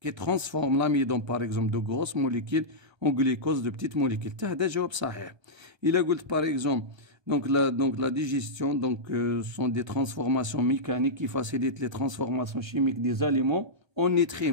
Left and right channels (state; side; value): late; left; 1.3 ms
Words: ترانسفورم لاميدون باغ اكزومبل دو غروس موليكيل اون غليكوز دو بتيت موليكيل حتى هذا جواب صحيح الا قلت باغ اكزومبل donc la digestion sont des transformations mécaniques qui facilitent les transformations chimiques des aliments en